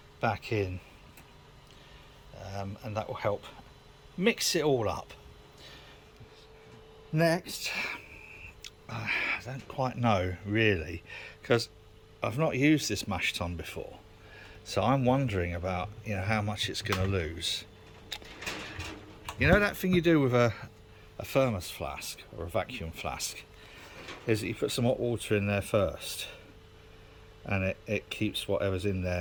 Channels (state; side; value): identical; both; correlation 1.00